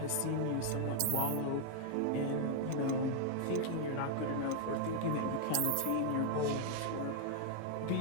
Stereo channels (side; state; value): both; different; correlation 0.00